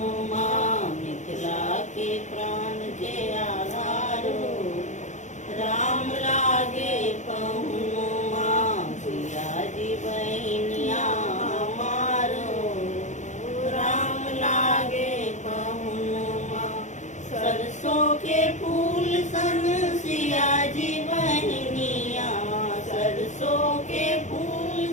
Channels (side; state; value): right; late; 0.35 ms